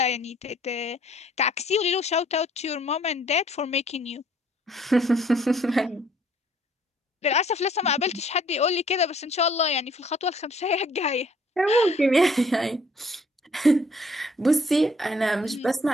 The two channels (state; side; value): normal; both; correlation 0.60